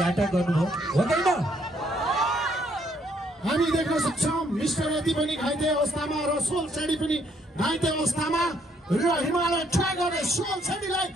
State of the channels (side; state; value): both; normal; correlation 0.69